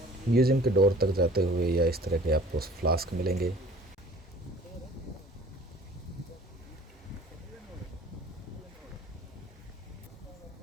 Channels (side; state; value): both; normal; correlation 0.49